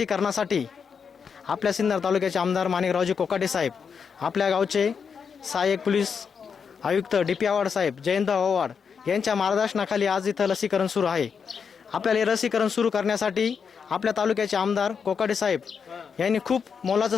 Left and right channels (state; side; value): quieter; right; 6.3 dB